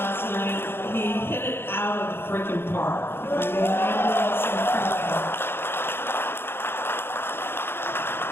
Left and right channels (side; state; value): right; late; 0.11 ms